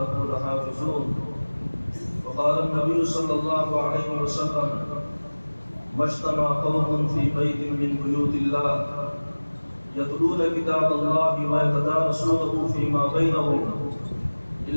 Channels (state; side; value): inverted; both; correlation -1.00